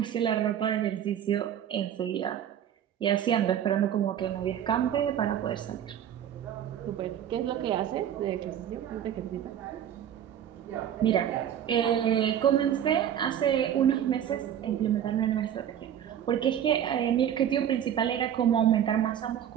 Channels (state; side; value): quieter; left; 9.9 dB